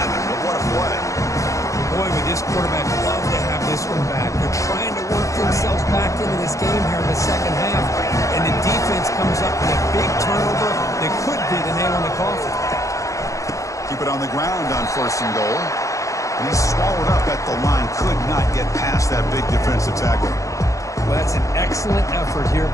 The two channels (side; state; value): right; late; 0.15 ms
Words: but what a play. Boy, would this quarterback love to have this one back. They're trying to work themselves back into this game here in the 2nd half, and the defense comes up with a big turnover that could be the nail in the coffin. Keep it on the ground on 1st and goal. And he's swallowed up at the line. Could not get past that big defensive tackle. Well, that's an excellent effort here